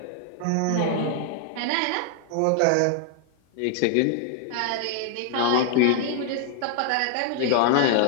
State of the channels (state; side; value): different; both; correlation 0.00